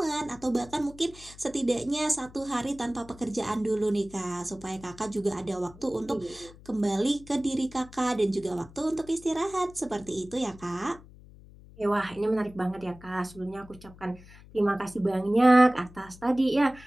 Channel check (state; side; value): noise; left; hum, 21 dB below the sound